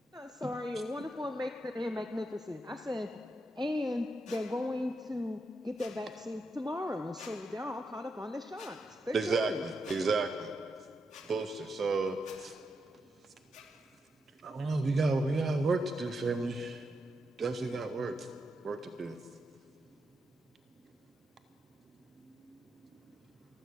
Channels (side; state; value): both; normal; correlation 0.84